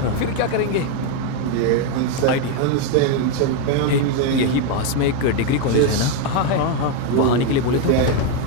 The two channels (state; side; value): different; both; correlation 0.02